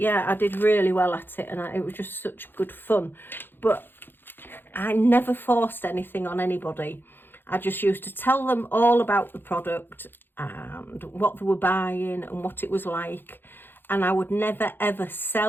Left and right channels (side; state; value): right; late; 0.099 ms